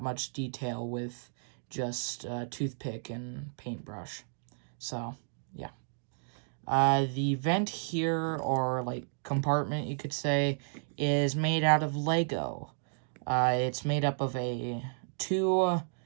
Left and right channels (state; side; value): silent; left; digital silence